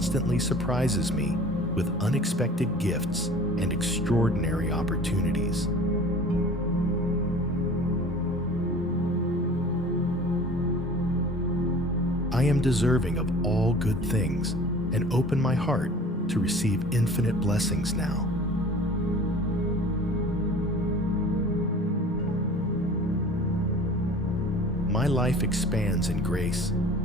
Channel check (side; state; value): both; normal; correlation 0.44